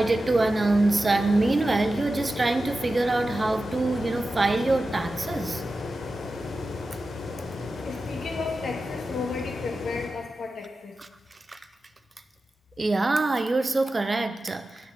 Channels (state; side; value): normal; both; correlation 0.93